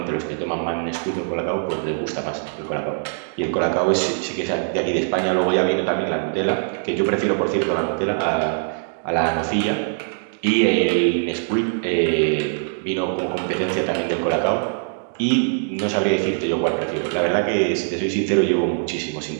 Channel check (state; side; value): silent; left; digital silence